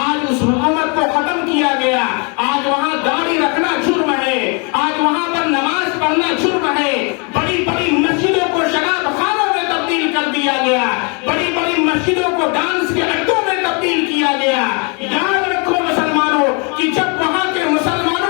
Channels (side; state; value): right; quieter; 34.0 dB